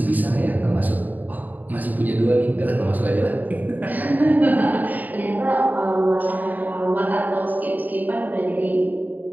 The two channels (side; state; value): left; late; 0.083 ms